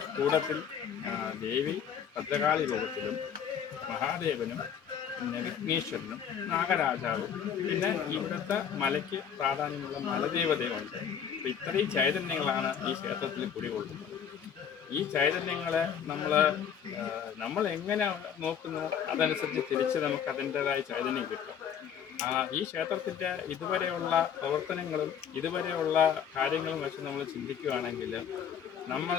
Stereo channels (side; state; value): right; quieter; 8.1 dB